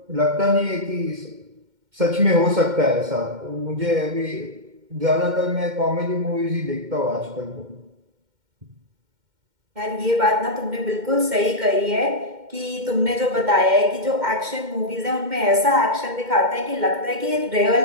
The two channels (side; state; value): left; late; 2.1 ms